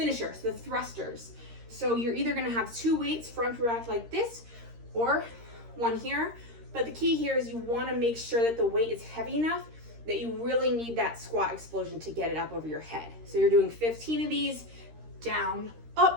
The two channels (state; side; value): late; left; 13 ms